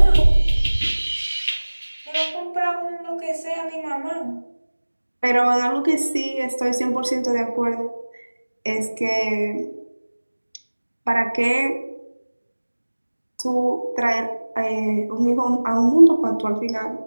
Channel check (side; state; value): both; inverted; correlation -1.00